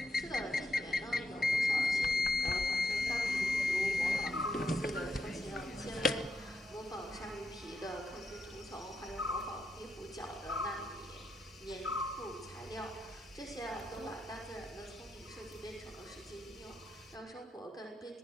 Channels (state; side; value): normal; both; correlation 0.82